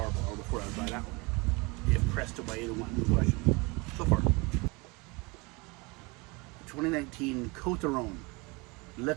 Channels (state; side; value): quieter; left; 26.8 dB